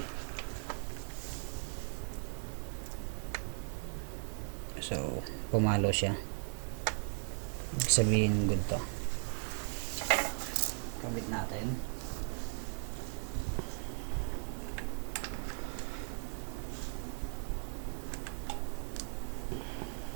So pumalo siya, ibig sabihin good to. Kabit natin.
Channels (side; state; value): left; silent; 53 dB below the other